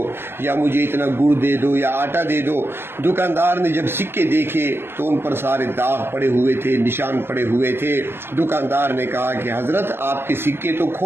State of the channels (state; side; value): late; left; 0.11 ms